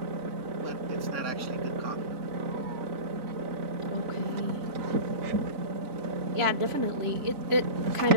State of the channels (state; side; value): late; left; 3.6 ms